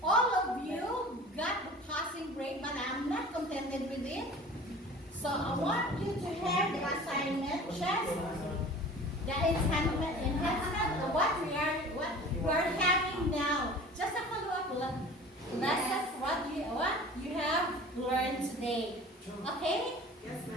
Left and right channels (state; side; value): normal; both; correlation 0.42